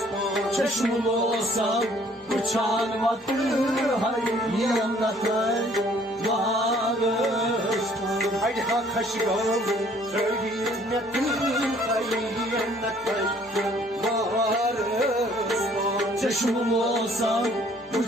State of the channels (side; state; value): both; normal; correlation 0.59